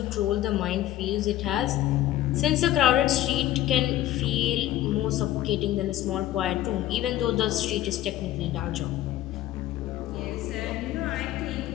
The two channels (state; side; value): quieter; right; 13.7 dB